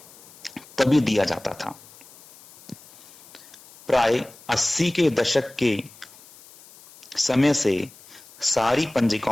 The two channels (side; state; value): left; noise; hiss, 23 dB below the sound